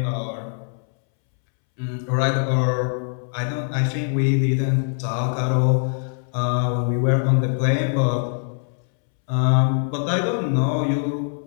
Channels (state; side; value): silent; right; 64 dB below the other